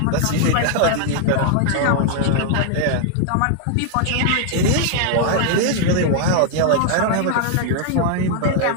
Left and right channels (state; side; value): different; both; correlation 0.00